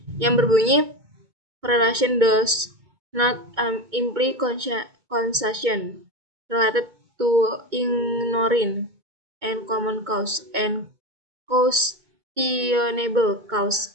yang berbunyi correlation does not imply causation related to ignoring and common cause, and questionable cause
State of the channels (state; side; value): late; left; 2.2 ms